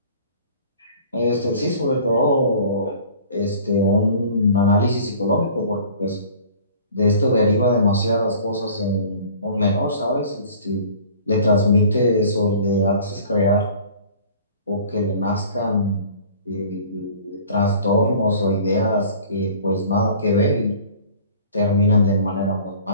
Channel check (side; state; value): both; inverted; correlation -0.47